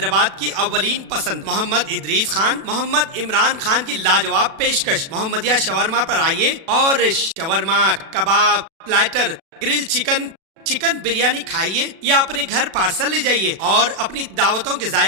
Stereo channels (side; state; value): left; late; 36 ms